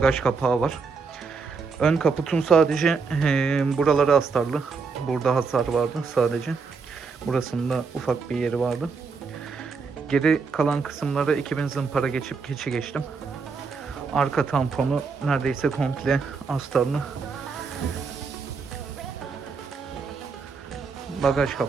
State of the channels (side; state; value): left; quieter; 5.0 dB